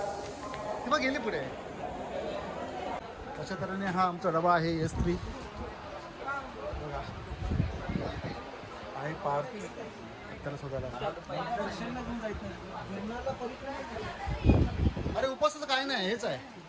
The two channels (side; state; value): both; identical; correlation 1.00